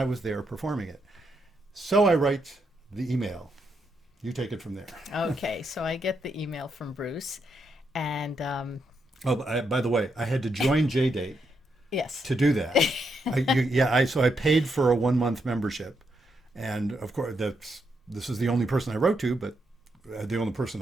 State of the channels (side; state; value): both; normal; correlation 0.80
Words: was there performing it. So I write the email. You take it from there. Okay, so I get the email from Bruce, and by the way, I had to join JDate yes, to do that. So I paid for a 1-month membership, and of course this is the only person I wrote to, but the only